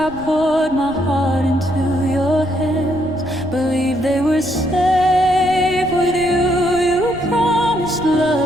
poured my heart into your hands, believed they were safe with you. You promised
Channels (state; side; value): noise; right; rumble, 17 dB below the sound